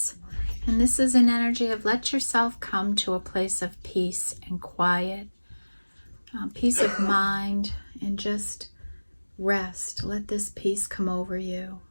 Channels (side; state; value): both; inverted; correlation -1.00